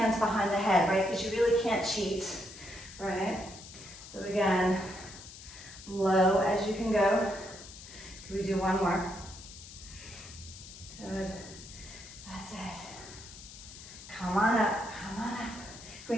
behind the head, right, because you really can't cheat, right? So again, low as you can go. Can we do one more? Good, that's it. Come on up. Can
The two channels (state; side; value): noise; left; hiss, 15 dB below the sound